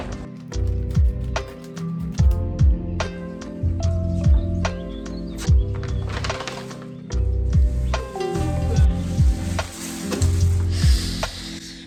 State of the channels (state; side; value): identical; both; correlation 1.00